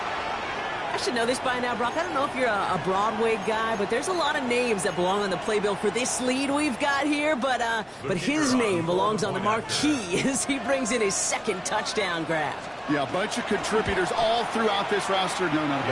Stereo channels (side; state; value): both; identical; correlation 1.00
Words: I should know this by now, Brock. I don't know if you're a Broadway guy, but there's a lot of names that belong on the playbill for this lead we've got here. But his name belongs on the marquee as he brings in his 2nd touchdown grab. Yeah, a bunch of contributors all throughout this roster. No, not a